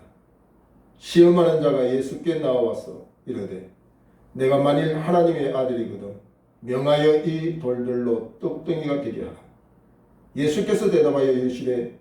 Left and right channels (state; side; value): identical; both; correlation 1.00